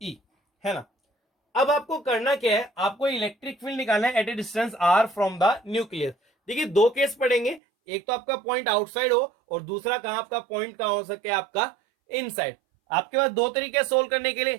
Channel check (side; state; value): left; drops out; at 7.6 s